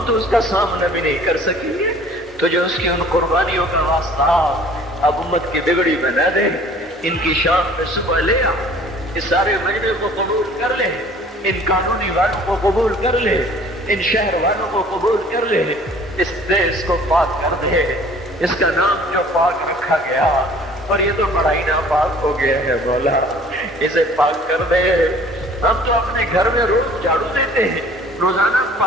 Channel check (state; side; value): normal; both; correlation 0.51